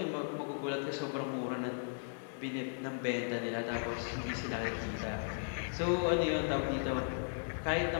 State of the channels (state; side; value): silent; right; digital silence